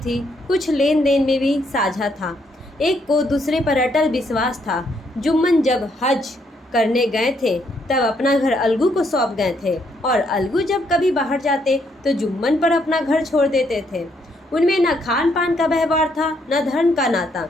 कुछ लेन देन में भी साझा था। एक को दूसरे पर अटल विश्वास था। जुम्मन जब हज करने गए थे तब अपना घर अलगू को सौंप गए थे और अलगू जब कभी बाहर जाते तो जुम्मन पर अपना घर छोड़ देते थे। उनमें न खान पान का व्यवहार था, न धर्म का नाता,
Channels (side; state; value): both; normal; correlation 0.73